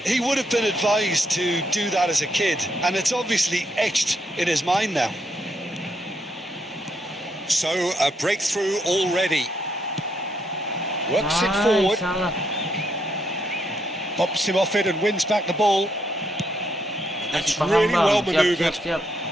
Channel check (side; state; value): both; normal; correlation 0.76